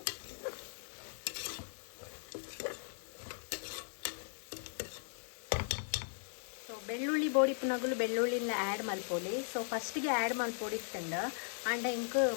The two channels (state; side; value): silent; right; digital silence